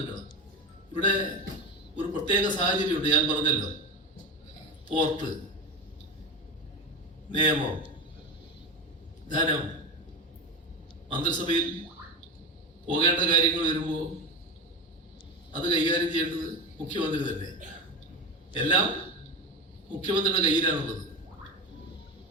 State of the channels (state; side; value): normal; both; correlation 0.21